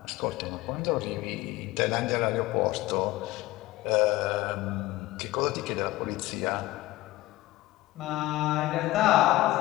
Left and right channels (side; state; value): right; quieter; 18.0 dB